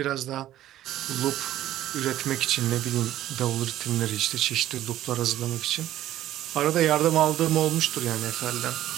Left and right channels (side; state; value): left; quieter; 13.3 dB